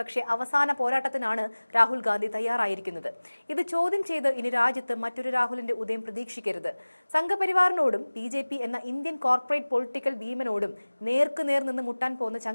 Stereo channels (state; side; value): inverted; both; correlation -1.00